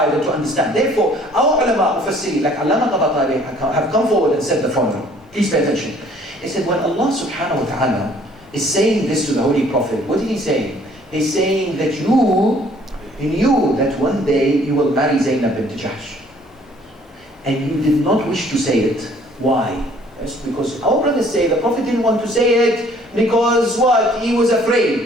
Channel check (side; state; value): both; normal; correlation 0.58